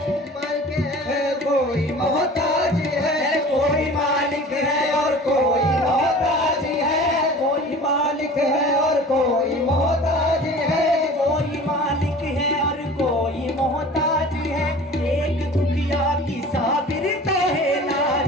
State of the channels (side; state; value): both; normal; correlation 0.42